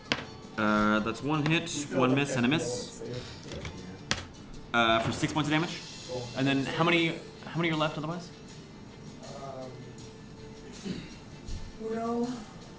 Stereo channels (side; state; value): both; identical; correlation 1.00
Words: That's 1 hit, 1 miss, and a miss. For 6 points of damage. And then how many are left otherwise? Uno,